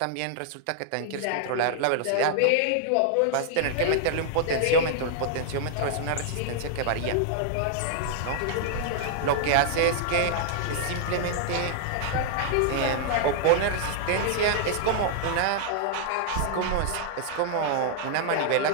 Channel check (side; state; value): both; different; correlation -0.01